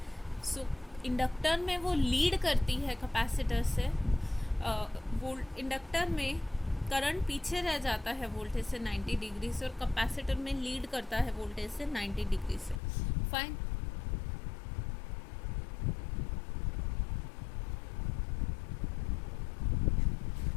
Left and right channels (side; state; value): right; drops out; at 12.8 s